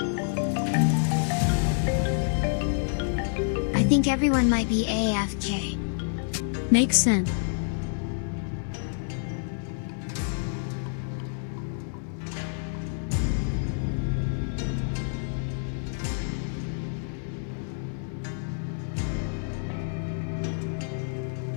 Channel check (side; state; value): right; silent; 59 dB below the other